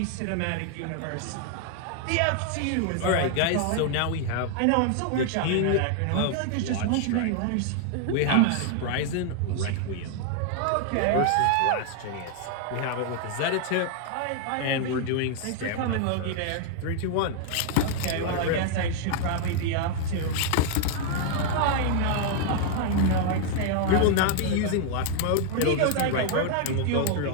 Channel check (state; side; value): different; both; correlation 0.00